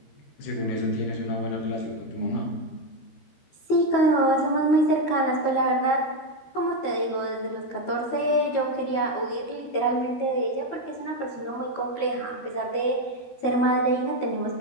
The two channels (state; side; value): late; right; 13 ms